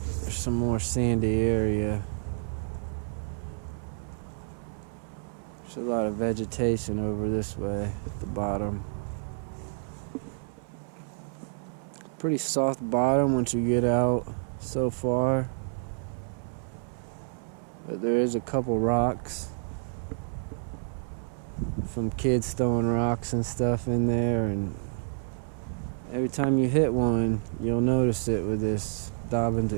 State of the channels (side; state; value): left; silent; 58 dB below the other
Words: there's some more sandy area. There's a lot of vegetation over this way at the bottom. Pretty soft bottom once you get out so far. But there is a couple rocks from kids throwing rocks and stuff in there, and every time you hit one, you'll notice it with this Dobyns